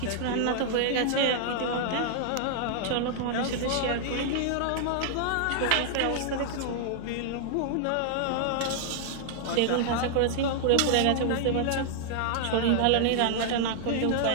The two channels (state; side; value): different; both; correlation -0.01